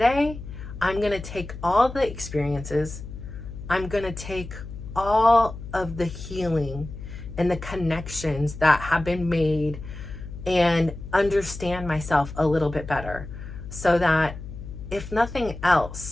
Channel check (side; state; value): left; noise; hum, 11 dB below the sound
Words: I'm going to take all the experiences, I'm going to take all of the healing and the connections that have been made and understand myself a little bit better so that if nothing